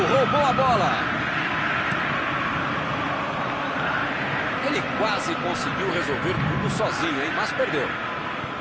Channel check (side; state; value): both; identical; correlation 1.00